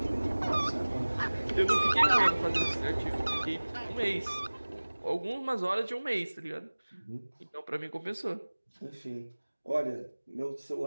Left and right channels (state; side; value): inverted; both; correlation -1.00